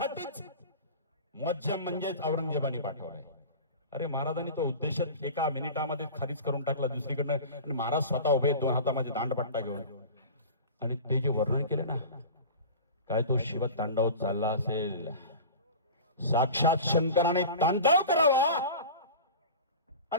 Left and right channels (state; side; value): inverted; both; correlation -0.35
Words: मुअज्जम म्हणजेच औरंगजेबाने पाठवलाय. अरे महाराजांनी तो उद्देश एका मिनिटामध्ये खालीच करून टाकला दुसरीकडनं, आणि महाराज स्वतः उभे 2 हातामध्ये दांडपट्टा घेऊन. आणि ते जे वर्णन केले ना, काय तो शिव तांडव चालला असेल, साक्षात शंकराने तांडव करावा